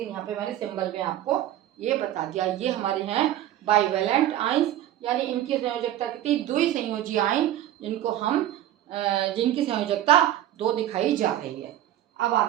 यहाँ पे मैंने सिंबल में आपको ये बता दिया। ये हमारे हैं बाइवेलेंट आयंस, यानी इनकी संयोजकता कितनी, द्विसंयोजी आयन, जिनको हम जिनकी संयोजकता 2 दिखाई जा रही है। अब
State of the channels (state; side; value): quieter; left; 12.7 dB